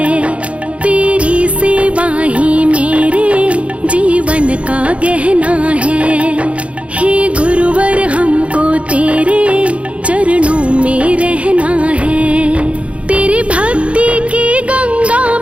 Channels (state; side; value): late; left; 0.062 ms